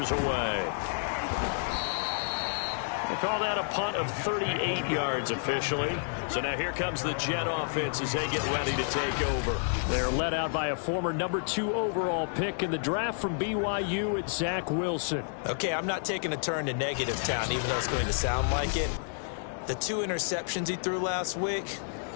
away. They call that a punt of 38 yards officially. So now here comes the Jet offense as they get ready to take over. They're led out by a former number 2 overall pick in the draft from BYU at Zach Wilson. Okay, I'm not taking a turn to negative town, even though it's going to sound like it. The 2 interceptions he threw last week,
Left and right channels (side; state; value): right; silent; digital silence